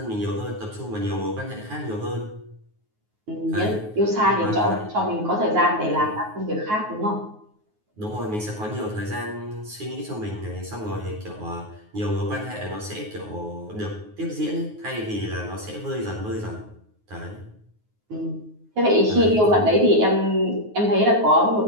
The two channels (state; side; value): late; left; 9.4 ms